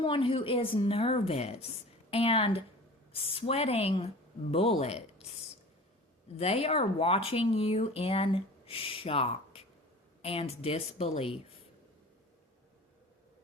who is nervous and sweating bullets. They are watching you in shock and disbelief.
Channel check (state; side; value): normal; both; correlation 0.40